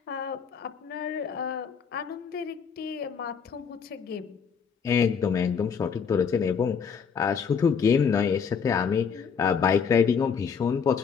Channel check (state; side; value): quieter; right; 6.5 dB